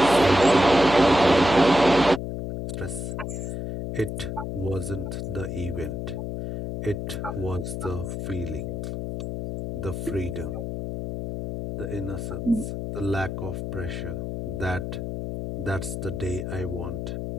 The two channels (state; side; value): noise; left; hum, 5 dB below the sound